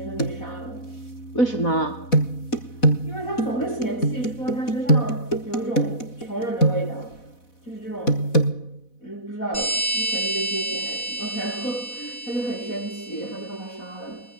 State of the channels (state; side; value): late; right; 4.1 ms